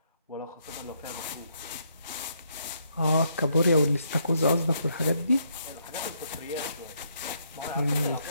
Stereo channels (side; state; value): both; inverted; correlation -0.74